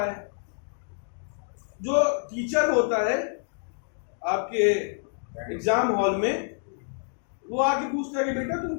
है। जो टीचर होता है आपके एग्जाम हॉल में, वो आके पूछता है कि बेटा तुम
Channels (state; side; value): silent; right; digital silence